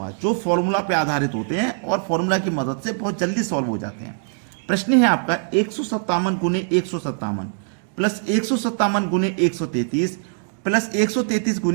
जो फॉर्मूला पे आधारित होते हैं और फॉर्मूला की मदद से बहुत जल्दी सॉल्व हो जाते हैं। प्रश्न है आपका 157 गुने 157 प्लस 157 गुने 133 प्लस 133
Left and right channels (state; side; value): silent; left; digital silence